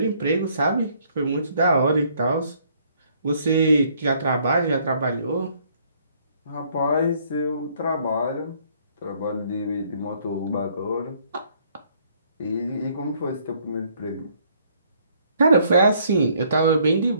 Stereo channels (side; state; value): both; inverted; correlation -0.65